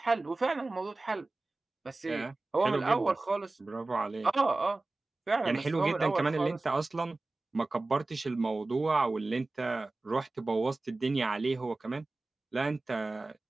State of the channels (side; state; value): left; quieter; 3.2 dB